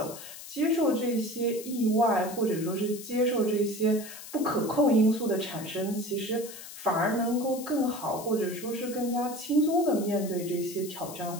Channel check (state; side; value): noise; left; hiss, 13 dB below the sound